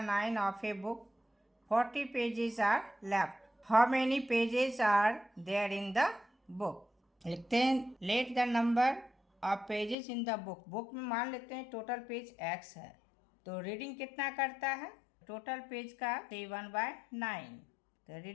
of a book 40 pages are left, how many pages are there in the book. लिखते हैं let the number of pages in the book. Book में मान लेते हैं टोटल पेज x है, तो रीडिंग कितना करता है टोटल पेज का 7/9। तो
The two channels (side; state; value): right; drops out; at 10.0 s